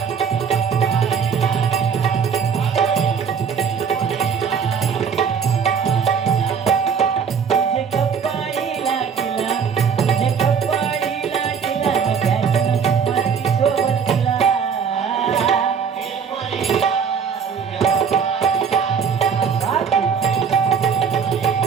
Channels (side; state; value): left; quieter; 6.7 dB